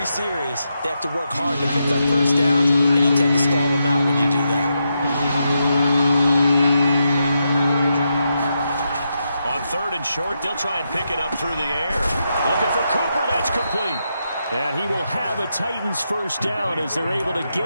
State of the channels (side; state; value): both; inverted; correlation -0.83